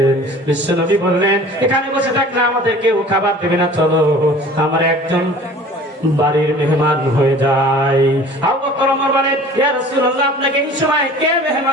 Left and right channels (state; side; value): normal; both; correlation 0.45